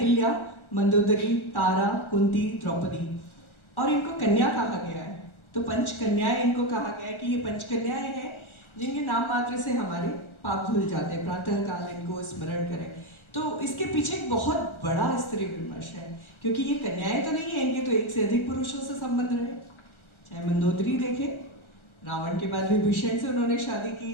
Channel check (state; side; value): late; right; 1.4 ms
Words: मंदोदरी, तारा, कुंती, द्रौपदी, और इनको कन्या कहा गया है। तो पंचकन्याएं इनको कहा गया है कि ये पंचकन्याएं हैं जिनके नाम मात्र से हमारे पाप धुल जाते हैं, प्रातः काल इनको स्मरण करें। तो इसके पीछे एक बहुत बड़ा स्त्री विमर्श है, क्योंकि ये कन्याएं तो नहीं है, इनके तो एक से अधिक पुरुषों से संबंध रहे। चाहे मंदोदरी देखे, रावण के बाद विभीषण से उन्होंने शादी की।